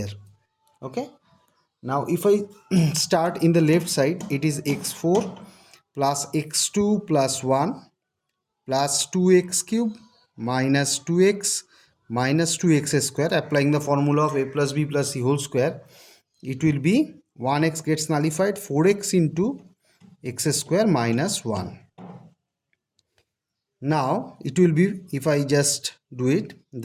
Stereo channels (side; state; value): both; identical; correlation 1.00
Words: Okay. Now if I start in the left side, it is x4 plus x2 plus 1 plus 2x cube minus 2x minus 2x square. Applying the formula of a plus b plus c whole square, it will be 1x gets nullified, 4x into x square minus 1. Now it will be, if I just do it,